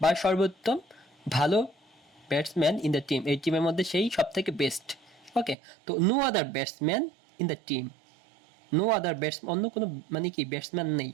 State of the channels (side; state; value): left; drops out; at 5.6 s